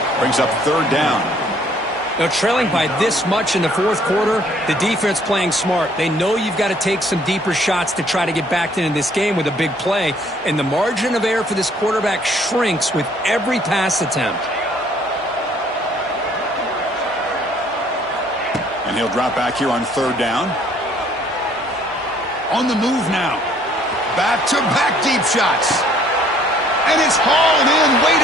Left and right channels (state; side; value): normal; both; correlation 0.61